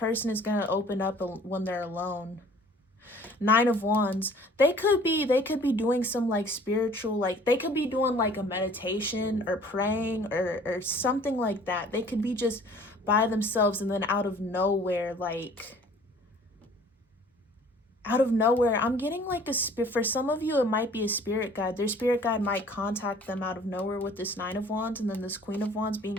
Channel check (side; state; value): both; normal; correlation 0.52